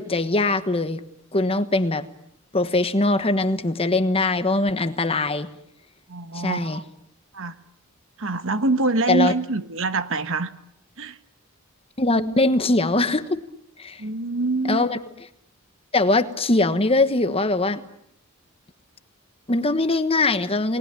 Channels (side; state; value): both; normal; correlation 0.36